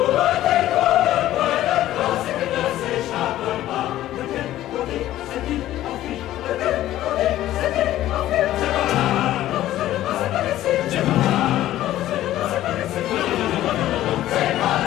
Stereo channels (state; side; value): quieter; right; 13.9 dB